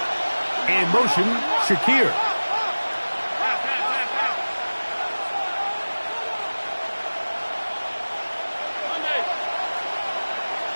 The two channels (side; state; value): both; inverted; correlation -1.00